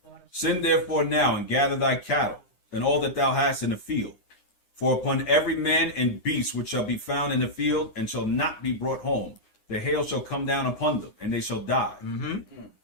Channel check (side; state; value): right; late; 9.7 ms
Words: Send therefore now and gather thy cattle, and all that thou hast in the field. For upon every man and beast which shall be found in the field, and shall not be brought home, the hail shall come down upon them, and they shall die.